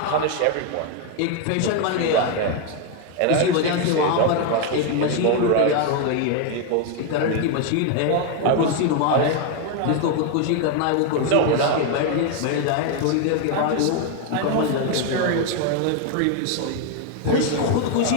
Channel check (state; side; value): different; both; correlation 0.01